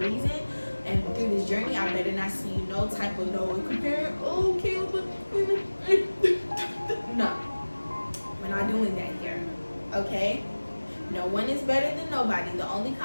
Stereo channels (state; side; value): inverted; both; correlation -1.00